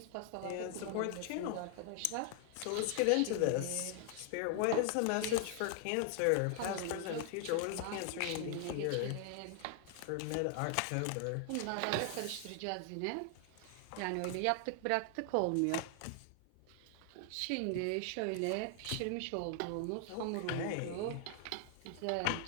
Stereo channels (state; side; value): different; both; correlation 0.00